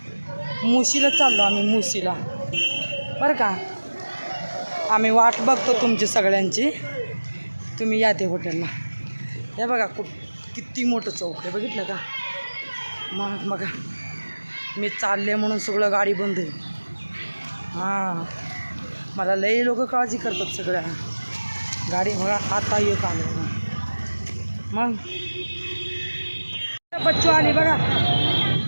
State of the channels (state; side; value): inverted; both; correlation -1.00